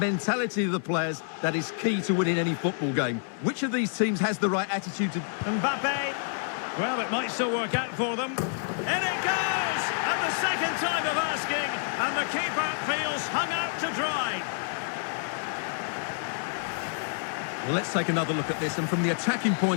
of the players that is key to winning any football game. Which of these teams has the right attitude to... Mbappe! Well, it might still work out for them. In it goes! At the second time of asking, and the keeper feels hung out to dry. Well, let's take another look at this, and from the attacking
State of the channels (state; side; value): silent; right; digital silence